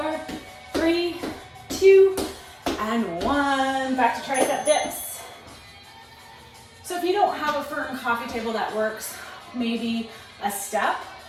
3, 2, and 1. Back to tricep dips. So if you don't have a firm coffee table that works, maybe a step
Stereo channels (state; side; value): identical; both; correlation 1.00